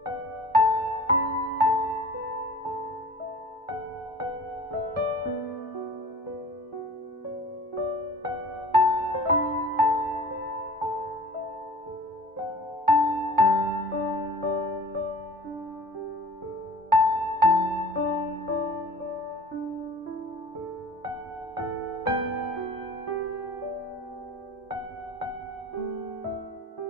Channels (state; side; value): normal; both; correlation 0.44